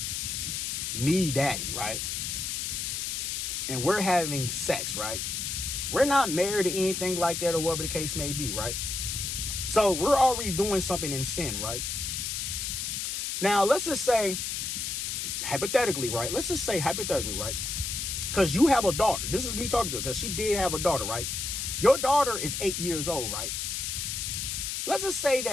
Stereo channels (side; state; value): left; noise; hiss, 3 dB below the sound